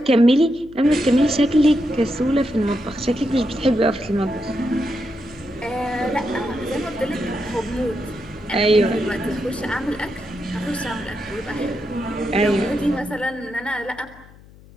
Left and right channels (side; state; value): left; noise; hum, 23 dB below the sound